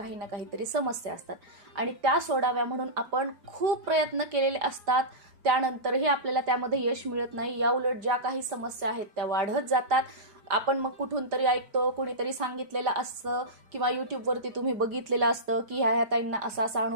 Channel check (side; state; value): left; late; 5.0 ms